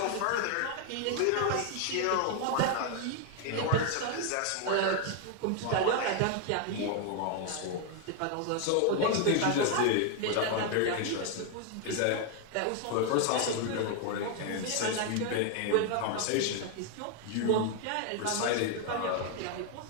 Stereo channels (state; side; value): different; both; correlation 0.00